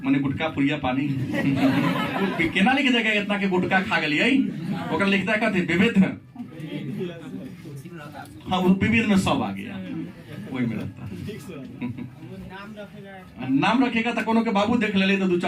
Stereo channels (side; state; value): both; identical; correlation 1.00